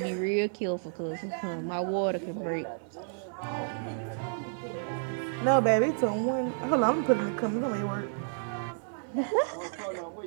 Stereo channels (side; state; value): left; silent; digital silence